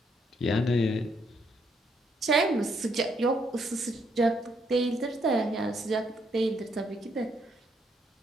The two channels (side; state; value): both; normal; correlation 0.73